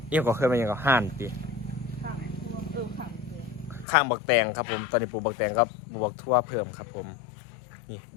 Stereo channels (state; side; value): drops out; right; at 3.9 s